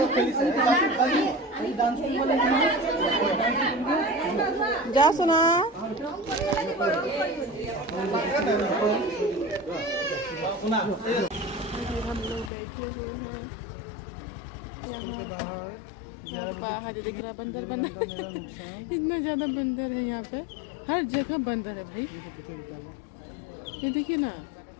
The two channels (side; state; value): right; drops out; at 12.5 s